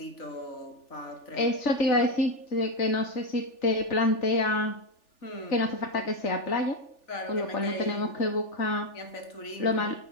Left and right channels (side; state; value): right; late; 3.4 ms